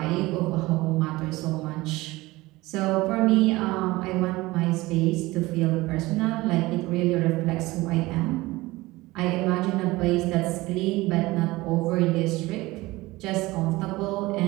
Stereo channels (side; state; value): left; quieter; 20.0 dB